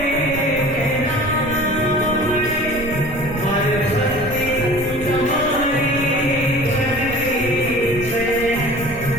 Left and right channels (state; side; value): noise; right; rumble, 12 dB below the sound